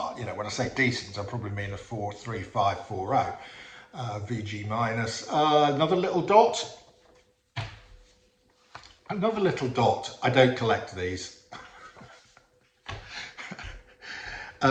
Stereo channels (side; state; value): both; identical; correlation 1.00